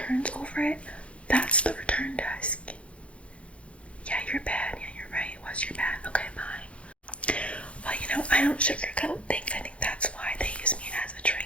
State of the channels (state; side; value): late; right; 0.061 ms